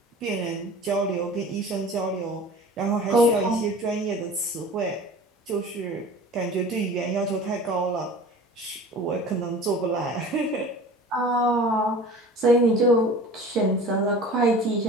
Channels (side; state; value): both; normal; correlation 0.41